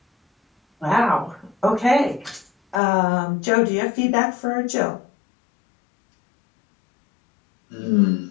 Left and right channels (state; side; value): drops out; right; at 2.8 s